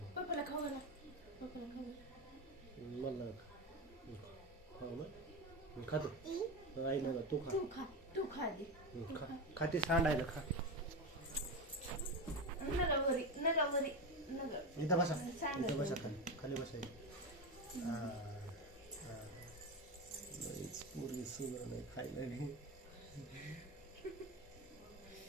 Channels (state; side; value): normal; both; correlation 0.18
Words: पप्पाला खाऊ घाला पप्पाला खाऊ मला खाऊ ना खातो आई ना तू खा तू खा आधी खा ती सांडायला खा नगावरी इथं बसा खाली बसा मुर्गी सुंदर नाही खायला